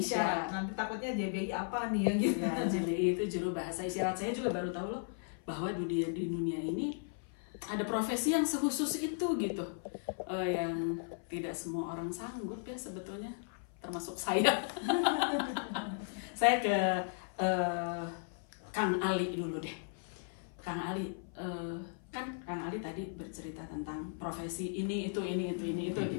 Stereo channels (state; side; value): silent; right; 54 dB below the other